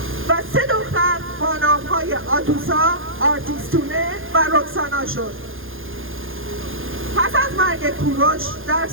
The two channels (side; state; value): left; late; 0.59 ms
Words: و 3 دختر با نام‌های آتوسا، آرتیستونه و رکسانا شد. پس از مرگ کورش در